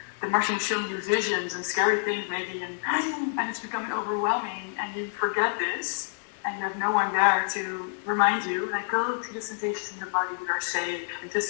the Martian will show you visions and scary things maybe, and it's becoming overwhelming, and you forget this, and you have no one there to remind you, like, go to the sensations in the body that are safe, and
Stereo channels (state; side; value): silent; right; digital silence